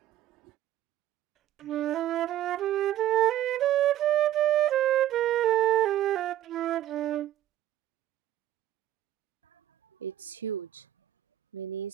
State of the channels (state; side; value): quieter; left; 12.8 dB